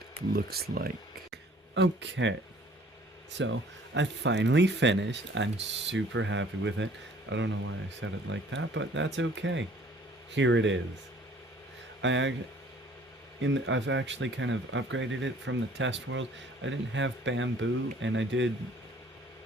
looks like. Okay, so I finally finished. I'm super happy with it. I don't know why I said it like that, but that's okay. Here it is. I've actually kind of upgraded it from the test world. I didn't have bamboo, and I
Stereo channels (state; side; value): normal; both; correlation 0.55